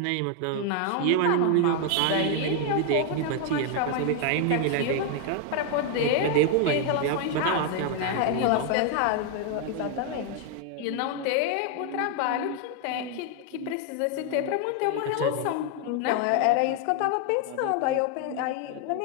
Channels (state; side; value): different; both; correlation 0.01